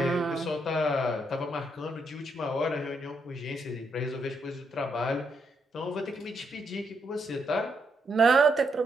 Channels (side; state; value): both; normal; correlation 0.78